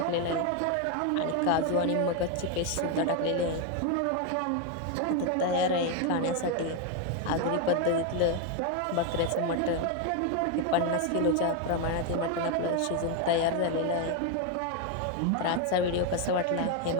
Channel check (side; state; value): both; different; correlation 0.02